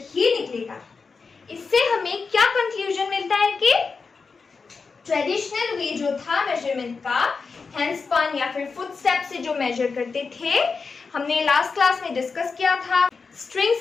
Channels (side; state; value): right; quieter; 4.8 dB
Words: ही निकलेगा। इससे हमें क्या कंक्लूजन मिलता है कि ट्रेडिशनल वे जो था मेजरमेंट का, हैंडस्पन या फिर फुटस्टेप से जो मेजर करते थे, हमने लास्ट क्लास में डिस्कस किया था, स्ट्रिंग